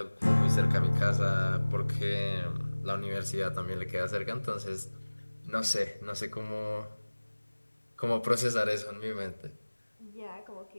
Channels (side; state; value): both; inverted; correlation -1.00